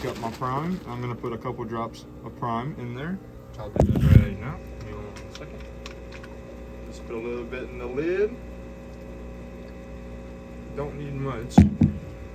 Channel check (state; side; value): identical; both; correlation 1.00